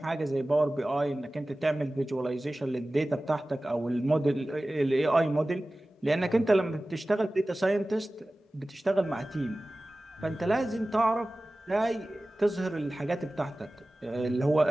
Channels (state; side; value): normal; both; correlation 0.97